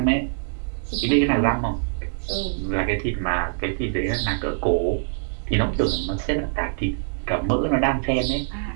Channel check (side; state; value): left; silent; 63 dB below the other